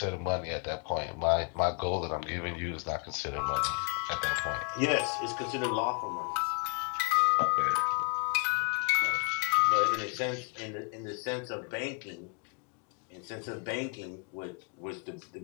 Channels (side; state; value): right; quieter; 36.2 dB